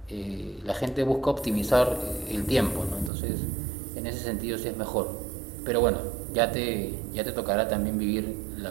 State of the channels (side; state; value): left; drops out; at 3.1 s